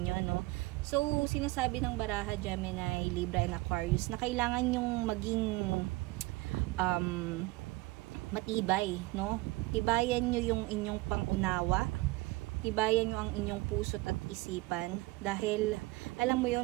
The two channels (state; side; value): quieter; left; 21.6 dB